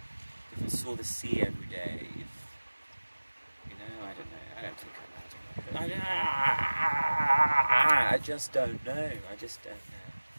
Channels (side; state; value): both; inverted; correlation -1.00